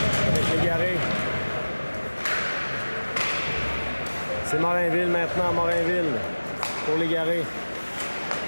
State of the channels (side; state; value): both; inverted; correlation -1.00